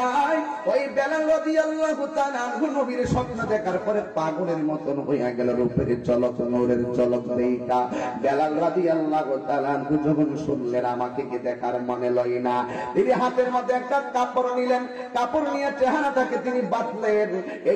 ওই বেলাল রাদিয়াল্লাহু তাআলা আনহু নবীর স্বপ্ন দেখার পরে পাগলের মতন হইয়া গেল। রূপের ঝলক, নূরের ঝলক দেখা বেলাল রাদিয়াল্লাহু তাআলা আনহু যখন শুনলেন আমাকে কি দেখার মনে লয় না, তিনি হাতের মধ্যে একটা কাপড় নিলেন। কাপড় নিয়ে চেহারাটাকে তিনি বাঁধলেন।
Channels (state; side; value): identical; both; correlation 1.00